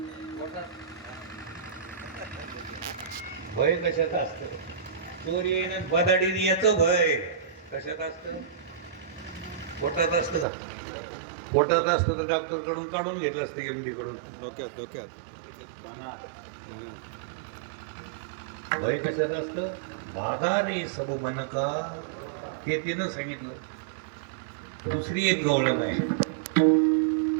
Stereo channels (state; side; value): drops out; left; at 10.5 s